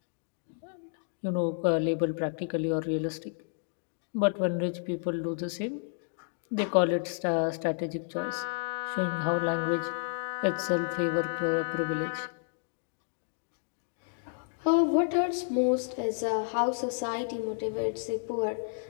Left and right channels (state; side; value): silent; right; digital silence